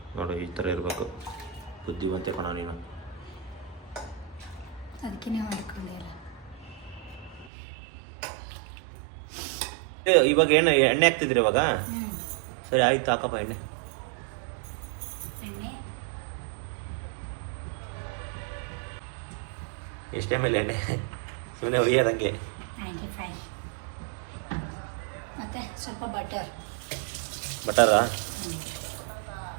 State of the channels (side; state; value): left; drops out; at 7.5 s